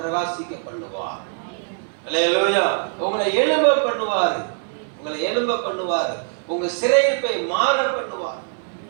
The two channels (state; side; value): silent; left; digital silence